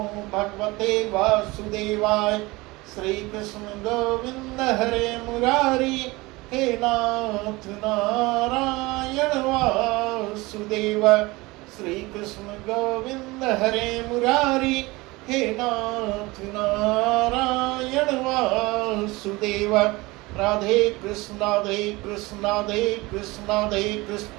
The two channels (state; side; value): quieter; left; 22.2 dB